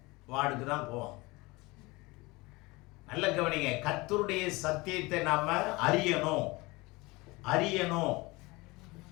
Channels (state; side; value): quieter; right; 23.3 dB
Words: வார்டுக்கு தான் போவோம். நல்ல கவனிங்க, கர்த்தருடைய சத்தியத்தை நாம அறியணும்.